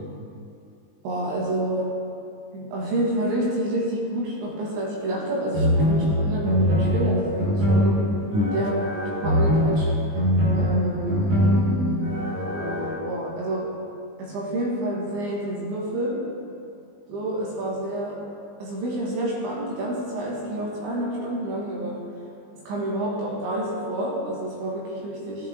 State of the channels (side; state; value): left; late; 20 ms